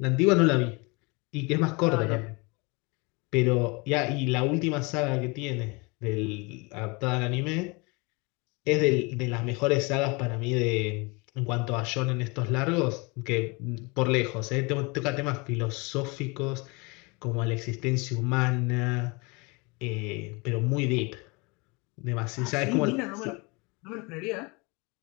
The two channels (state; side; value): quieter; right; 28.1 dB